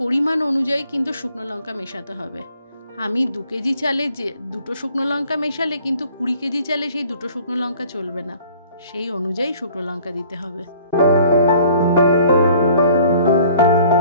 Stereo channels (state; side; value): inverted; both; correlation -0.54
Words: পরিমাণ অনুযায়ী কিন্তু শুকনো লঙ্কা মেশাতে হবে। আমি 2 কেজি চালে যে 2টো শুকনো লঙ্কা মেশালে কিন্তু 20 কেজি চালে সেই 2টো শুকনো লঙ্কা চলবে না, সেই অনুযায়ী শুকনো লঙ্কা দিতে হবে।